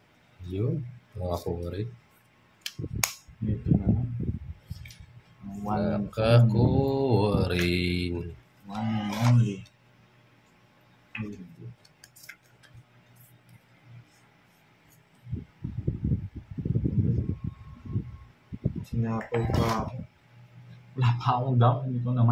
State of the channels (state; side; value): identical; both; correlation 1.00